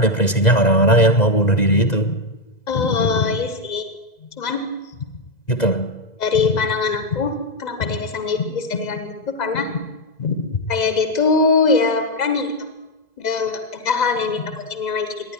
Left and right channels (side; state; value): right; late; 2.0 ms